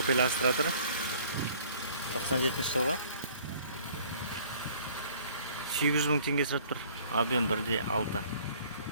Astra тұр. 97 жылға. 800 мың теңге сұрап тұр. Объем 1,6.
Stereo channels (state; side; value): inverted; both; correlation -0.55